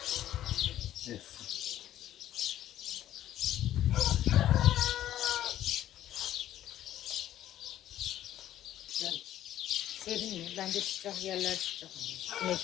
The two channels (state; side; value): quieter; right; 12.3 dB